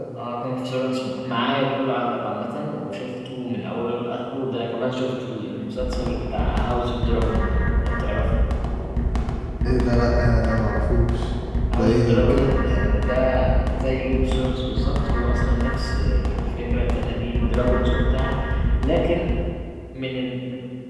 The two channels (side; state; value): both; identical; correlation 1.00